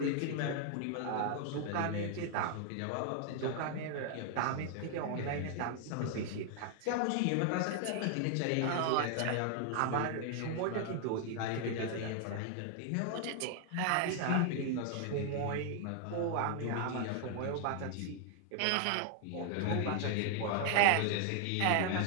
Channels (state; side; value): different; both; correlation 0.00